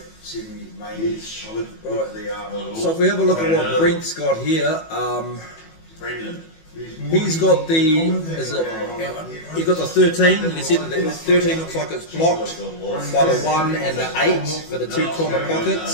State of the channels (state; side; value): late; right; 18 ms